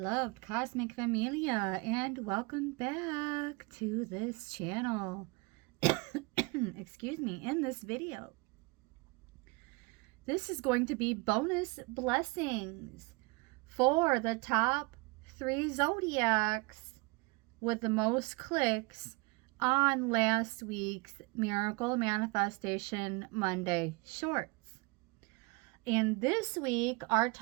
cosmic familia, and welcome back to this channel. Excuse me, in this video. This is going to be bonus blessings for the top 3 zodiacs with the most clicks on last week's Miracle Manifestation Monday short. And this week, our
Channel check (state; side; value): quieter; left; 26.8 dB